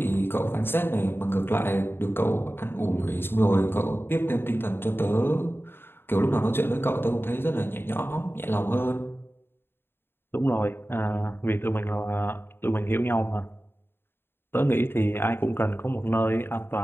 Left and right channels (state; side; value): late; right; 0.11 ms